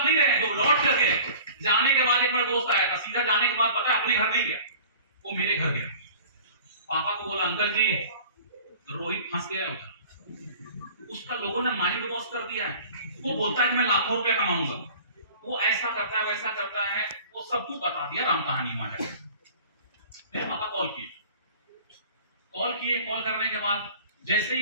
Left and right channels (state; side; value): inverted; both; correlation -0.44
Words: नहीं रहे, तो लौट कर गए। जाने के बाद एक मेरा दोस्त आया था, सीधा जाने के बाद पता है अपने घर नहीं गया, वो मेरे घर गया। पापा को बोला अंकल जी रोहित फंस गया उधर, उसका लोगों ने माइंड वॉश कर दिया है, वो बोलता है कि मैं लाखों रुपए कमाऊंगा, वो ऐसा करता है वैसा करता है, वो सब कुछ बता दिया राम कहानी वहां जाकर। मेरे पापा कॉल किए, कॉल करने के बाद जैसे